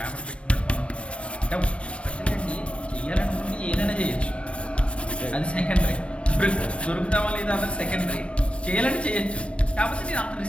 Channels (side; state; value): right; late; 0.061 ms